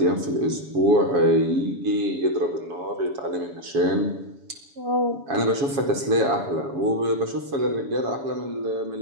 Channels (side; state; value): left; late; 7.1 ms